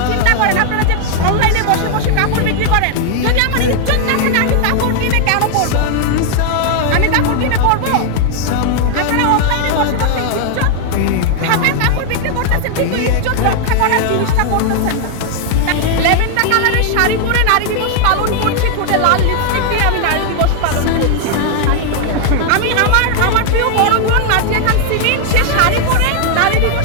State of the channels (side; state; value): both; different; correlation 0.00